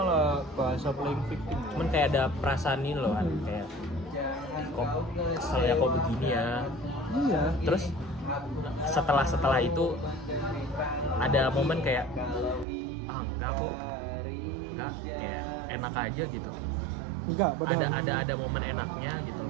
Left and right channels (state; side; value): drops out; left; at 12.7 s